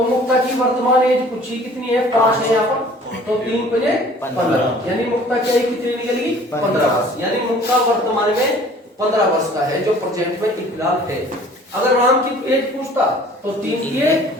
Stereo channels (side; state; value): both; normal; correlation 0.51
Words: मुक्ता की वर्तमान एज पूछी कितनी है? 5 है यहाँ पर, तो 3 5 15, यानी मुक्ता की आयु कितनी निकलेगी? 15 वर्ष। यानी मुक्ता वर्तमान में 15 वर्ष का है, जो प्रेजेंट में फिलहाल है। अगर राम की एज पूछता तो 3 3